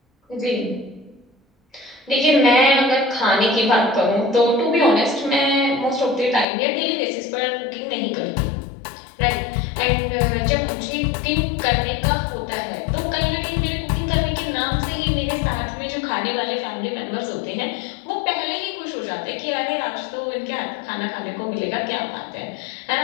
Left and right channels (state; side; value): drops out; right; at 6.5 s